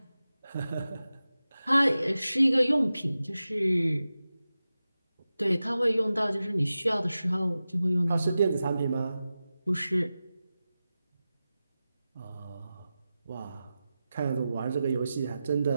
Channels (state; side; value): inverted; both; correlation -0.94